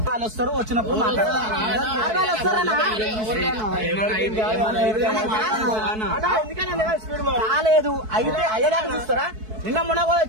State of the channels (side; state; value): left; late; 4.6 ms